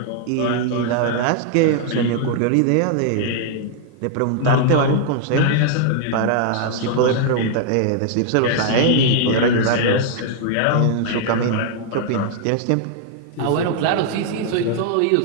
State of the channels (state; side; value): different; both; correlation 0.00